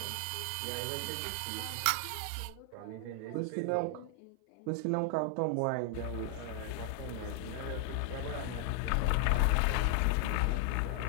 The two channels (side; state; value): both; different; correlation 0.00